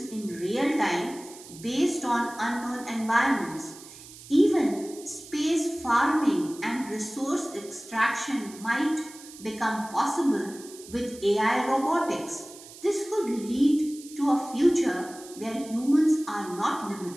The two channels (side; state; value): right; noise; hiss, 18 dB below the sound